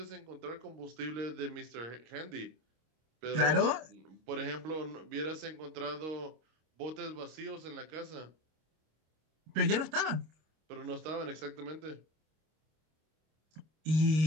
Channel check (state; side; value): late; left; 26 ms